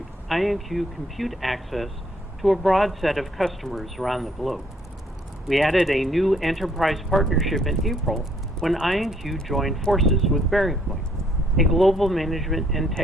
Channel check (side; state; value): both; normal; correlation 0.66